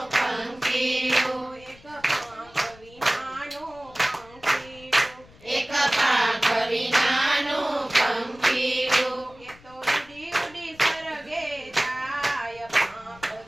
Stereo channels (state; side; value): noise; left; rumble, 24 dB below the sound